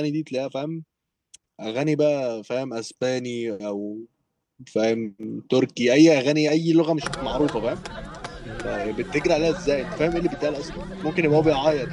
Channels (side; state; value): both; identical; correlation 1.00